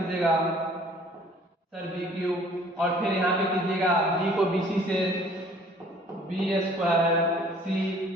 सर बी क्यूब, और फिर यहाँ पे कीजिएगा b को बी सी से बी स्क्वायर सी,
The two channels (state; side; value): normal; both; correlation 0.55